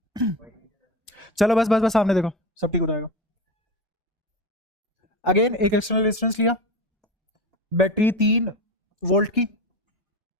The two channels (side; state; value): both; normal; correlation 0.25